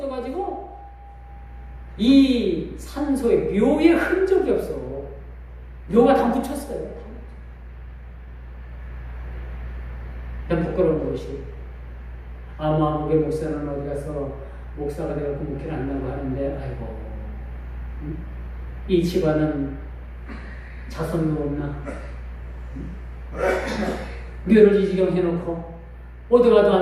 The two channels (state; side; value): identical; both; correlation 1.00